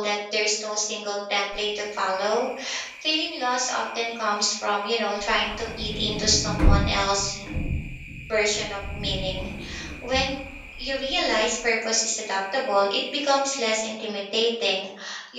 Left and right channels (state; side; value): identical; both; correlation 1.00